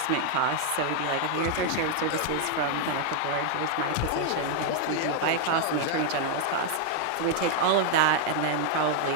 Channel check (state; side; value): different; both; correlation 0.00